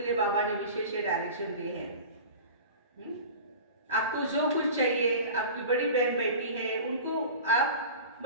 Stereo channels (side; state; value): both; inverted; correlation -0.36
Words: लिए बाबा ने विशेष डायरेक्शन दिए हैं। आपको जो कुछ चाहिए, आपकी बड़ी बहन बेटी है, उनको आप